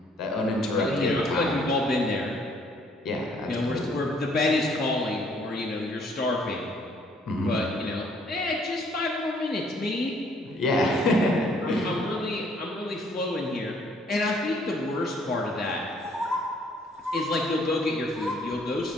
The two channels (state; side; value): normal; both; correlation 0.63